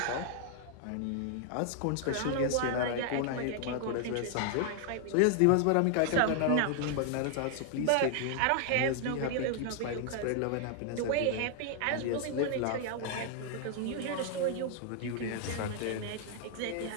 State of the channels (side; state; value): both; different; correlation 0.00